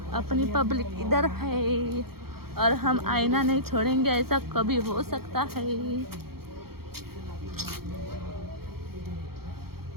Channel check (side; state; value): left; late; 0.94 ms